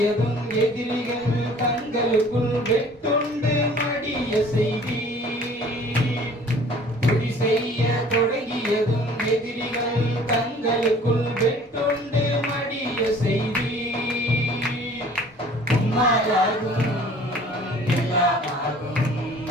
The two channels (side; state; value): both; normal; correlation 0.51